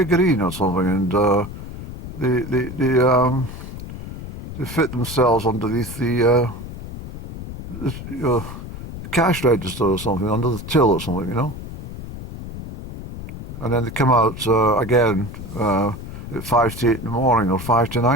or something, and they fit themselves underneath the cash register or something, under the till or something, you know. And then they come out again at 5 to 8 in the morning, or 5 to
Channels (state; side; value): noise; left; rumble, 10 dB below the sound